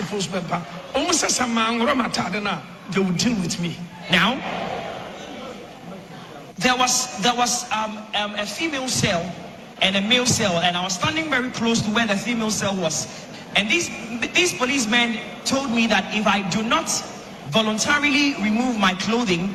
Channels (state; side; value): identical; both; correlation 1.00